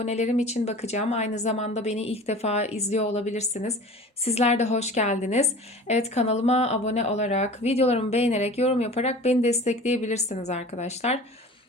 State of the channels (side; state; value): both; normal; correlation 0.40